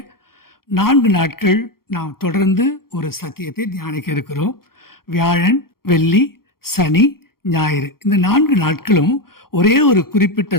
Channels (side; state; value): right; late; 0.93 ms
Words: 4 நாட்கள் நாம் தொடர்ந்து ஒரு சத்தியத்தை தியானிக்க இருக்கிறோம். வியாழன், வெள்ளி, சனி, ஞாயிறு இந்த 4 நாட்களும் ஒரே ஒரு குறிப்பிட்ட